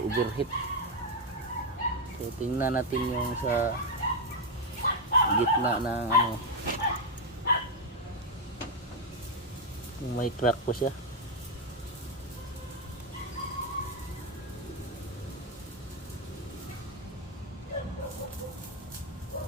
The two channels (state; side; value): normal; both; correlation 0.03